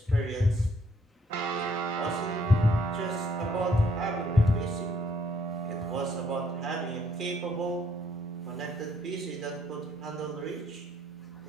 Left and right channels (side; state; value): both; normal; correlation 0.68